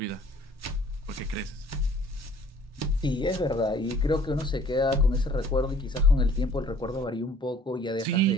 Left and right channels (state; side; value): normal; both; correlation 0.54